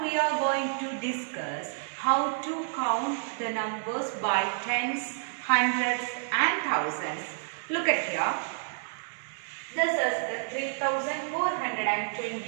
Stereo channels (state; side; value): silent; left; digital silence